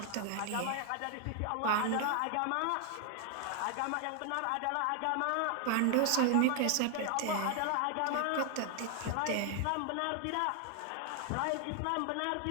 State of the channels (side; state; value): both; different; correlation 0.00